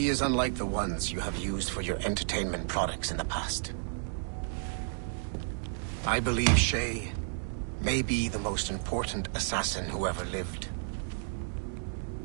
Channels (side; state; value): left; silent; digital silence